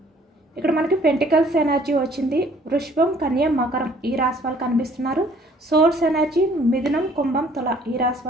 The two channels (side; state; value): both; normal; correlation 0.58